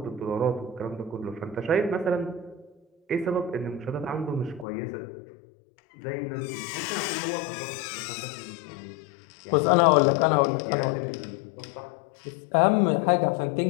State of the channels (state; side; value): drops out; right; at 4.7 s